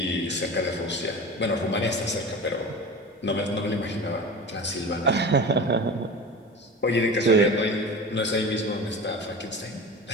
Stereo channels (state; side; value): normal; both; correlation 0.32